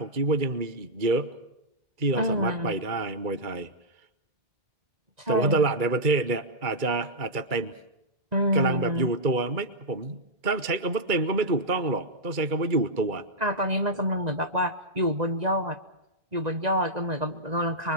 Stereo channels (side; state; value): left; late; 2.3 ms